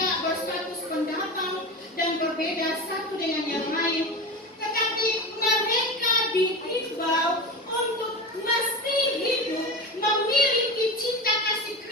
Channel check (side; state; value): both; normal; correlation 0.25